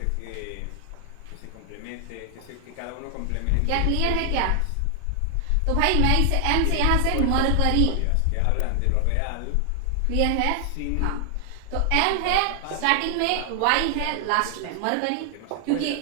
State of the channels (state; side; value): different; both; correlation 0.00